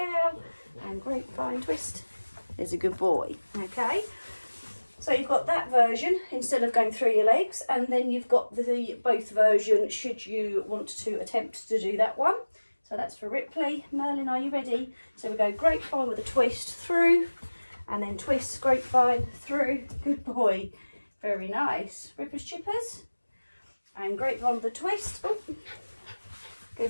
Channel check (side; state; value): both; inverted; correlation -1.00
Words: and grapevine, twist, there's a good boy. Okay, so you've got that version instead of going through your legs, and then you've got the both version should you want to attempt to do that one. So that's for Ripley. Merlin, are you ready? So we go grapevine with a twist through, and then twist, grapevine, through, good boy, very nice. Rippers, chippers, and grapevine with a twist, oh, go